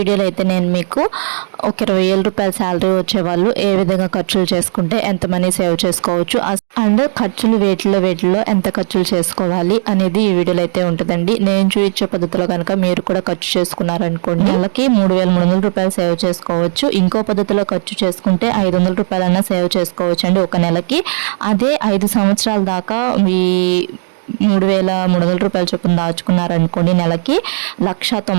అయితే నేను మీకు ఒక 20,000 రూపాయల శాలరీ వచ్చేవాళ్ళు ఏ విధంగా ఖర్చులు చేసుకుంటే ఎంత మనీ సేవ్ చేసుకోవచ్చు అండ్ ఖర్చులు వేటిలో ఎంత ఖర్చులు చేసుకోవాలి అనేది ఈ వీడియోలో అయితే ఉంటుందండి. నేను చూపించే పద్ధతిలో కనుక మీరు కూడా ఖర్చు చేసుకున్నారనుకోండి, నెలకి 3,300 రూపాయలు సేవ్ చేసుకోవచ్చు. ఇంకో పద్ధతిలో ఖర్చు చేసుకుంటే 500 రూపాయలన్నా సేవ్ చేసుకోవచ్చు అండి ఒక నెలకి. అదే 5 సంవత్సరాల దాకా మీ 3,300 రూపాయల చొప్పున దాచుకున్నారనుకోండి, నెలకి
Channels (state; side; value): silent; left; digital silence